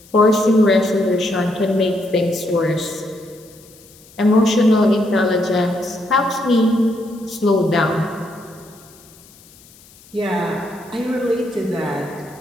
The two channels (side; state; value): left; noise; hiss, 25 dB below the sound